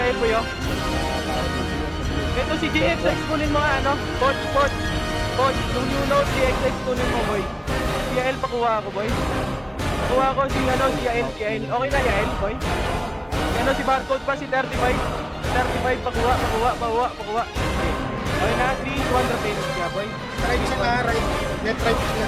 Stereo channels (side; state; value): both; identical; correlation 1.00